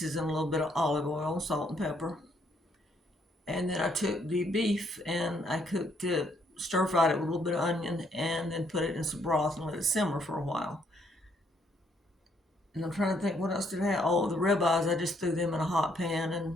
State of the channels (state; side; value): normal; both; correlation 0.70